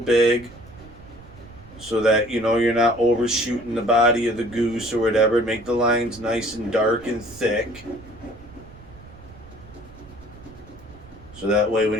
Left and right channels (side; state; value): right; noise; rumble, 20 dB below the sound